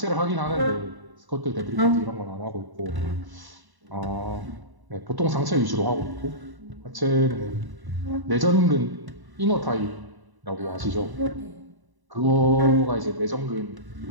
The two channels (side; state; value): left; late; 1.0 ms